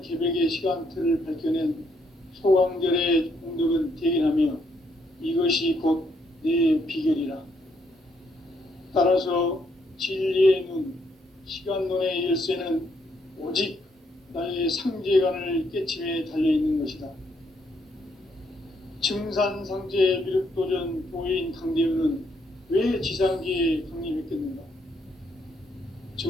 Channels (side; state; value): both; normal; correlation 0.73